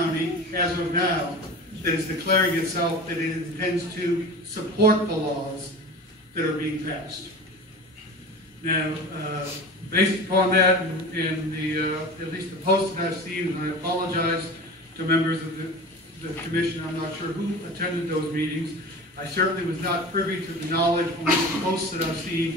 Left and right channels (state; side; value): normal; both; correlation 0.34